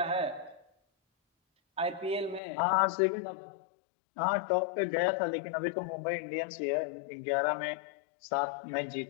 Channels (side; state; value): right; drops out; at 2.4 s